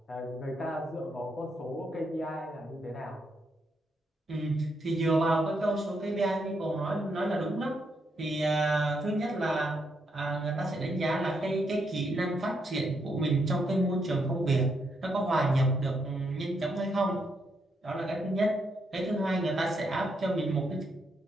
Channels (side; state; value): both; normal; correlation 0.78